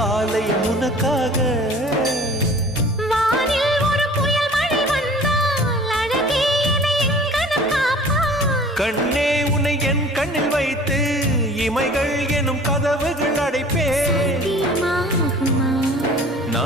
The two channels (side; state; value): both; normal; correlation 0.47